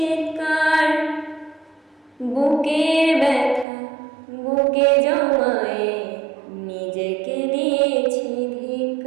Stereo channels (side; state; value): left; drops out; at 3.7 s